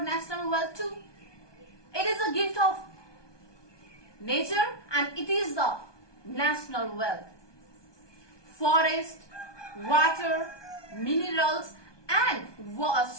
national wealth too. It is a gift of nature and it is the national wealth. Forest, water, minerals and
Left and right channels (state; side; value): late; right; 1.2 ms